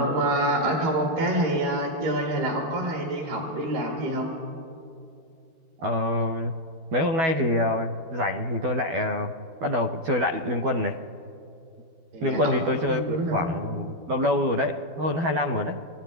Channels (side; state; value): left; late; 12 ms